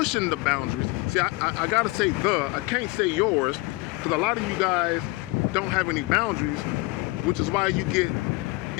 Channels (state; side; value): quieter; right; 23.1 dB